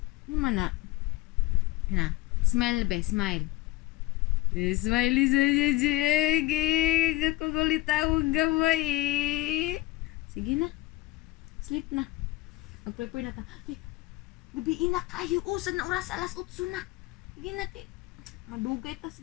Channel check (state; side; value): quieter; right; 18.3 dB